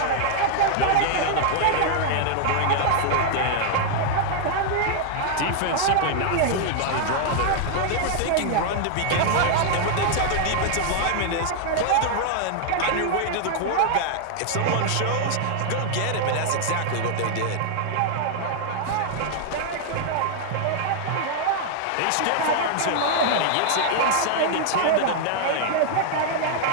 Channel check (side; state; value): both; different; correlation 0.00